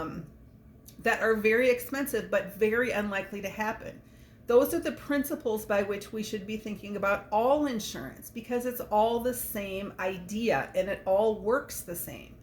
are very expensive but very unlikely to happen. Those are the principles by which we should be thinking about all insurance, because it's all the same idea and it all works the same.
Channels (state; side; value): identical; both; correlation 1.00